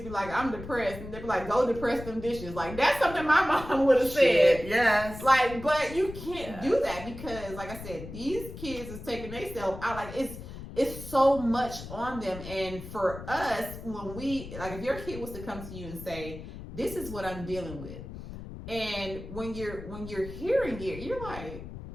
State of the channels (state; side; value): noise; left; rumble, 12 dB below the sound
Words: be like, I'm depressed, and they be like, go depress them dishes. Like, that's something my mom would have said. Yes. Like, but you can't do that because, like I said, these kids is taking themselves out. Like, it's so much on them. And for us, when we, like, if your kid was to come to you and say, this is what I'm dealing with, and when you're hearing it, you're like,